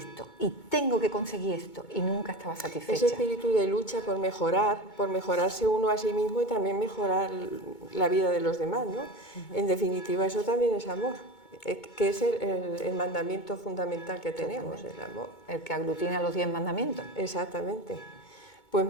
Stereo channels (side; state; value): right; late; 2.2 ms